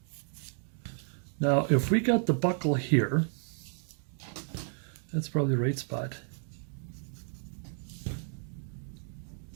Now if we got the buckle here, that's probably the right spot.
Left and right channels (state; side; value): silent; left; 56 dB below the other